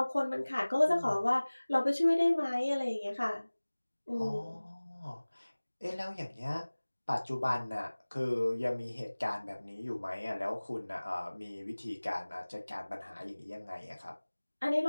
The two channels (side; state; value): both; inverted; correlation -1.00